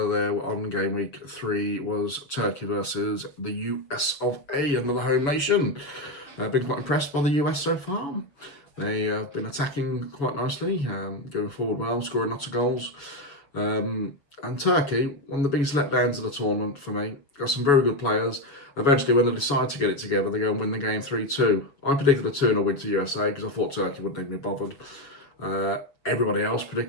there on game week 3 was Turkey versus the US of A, another home nation. I've been quite impressed by the US so far. They have been attacking quite nicely, going forward well, scoring lots of goals. And Turkey, one of the biggest letdowns of the tournament for me. Got some very good players. Eventually, when they decide to get it together, they go and win the game 3-2. I predicted a 2-0 win to USA because I thought Turkey wouldn't even be bothered. Everybody else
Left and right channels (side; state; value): right; late; 6.8 ms